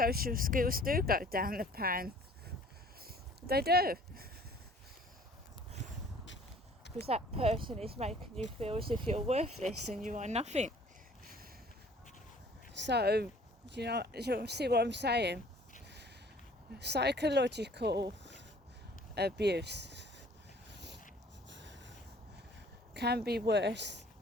skills do go down the pan. They do. Because that person is making you feel as if you're worthless and you are nothing. So, you see what I'm saying? Psychological abuse can be worse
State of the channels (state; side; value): normal; both; correlation 0.53